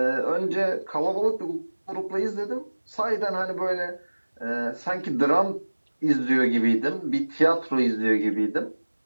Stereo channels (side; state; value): both; inverted; correlation -1.00